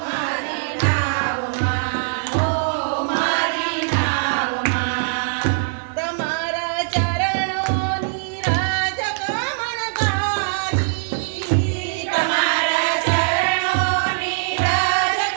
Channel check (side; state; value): left; silent; digital silence